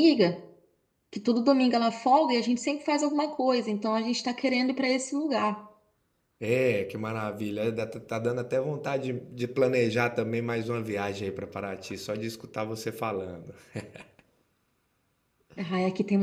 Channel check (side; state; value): both; identical; correlation 1.00